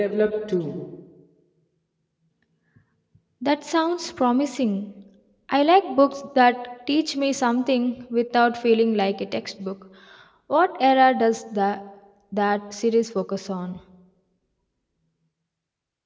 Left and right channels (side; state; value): both; identical; correlation 1.00